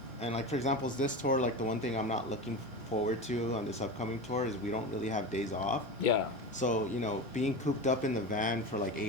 and like for example, this tour, like the one thing I'm not looking forward to on this upcoming tour is we don't really have days off. Yeah. So you know, being cooped up in the van for like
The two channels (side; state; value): both; normal; correlation 0.25